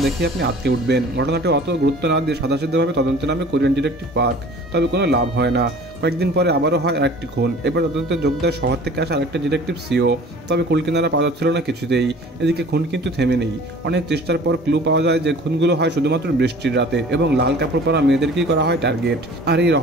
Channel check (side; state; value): both; normal; correlation 0.47